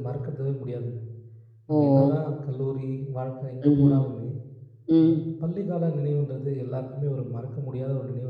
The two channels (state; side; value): identical; both; correlation 1.00